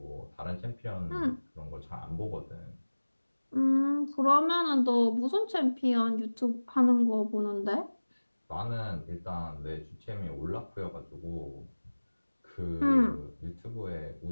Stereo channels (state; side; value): inverted; both; correlation -1.00